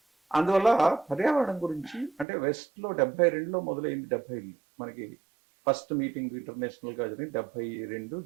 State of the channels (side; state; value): left; drops out; at 2.2 s